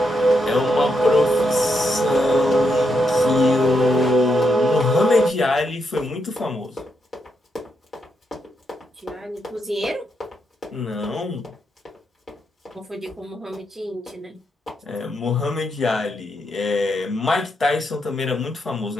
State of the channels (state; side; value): normal; both; correlation 0.81